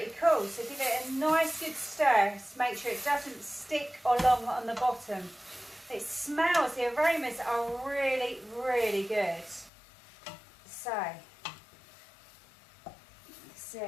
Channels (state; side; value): drops out; right; at 9.7 s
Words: cool, so give it a nice good stir to make sure it doesn't stick along on the bottom. It smells, the aromas are really, really good. So, that's